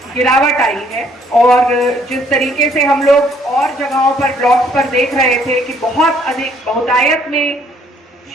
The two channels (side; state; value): both; normal; correlation 0.64